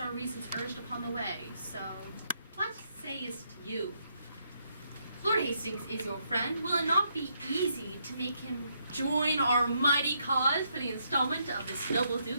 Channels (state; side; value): inverted; both; correlation -0.75